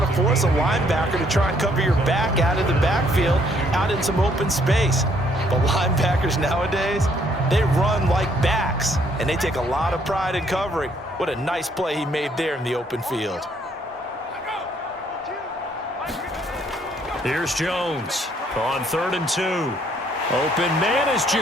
to force a linebacker to try and cover your back out of the backfield, out in some open space. But linebackers nowadays, they run like backs, and they take a lot of pride in covering. What a nice play he made there in the open field. Here's Jones on 3rd and 2. Open man is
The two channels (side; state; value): both; normal; correlation 0.67